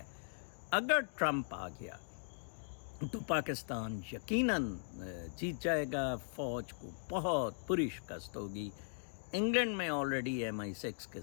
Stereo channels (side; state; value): right; silent; digital silence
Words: اگر ٹرمپ آ گیا تو پاکستان یقیناً جیت جائے گا، فوج کو بہت بری شکست ہوگی۔ انگلینڈ میں آلریڈی MI6 کے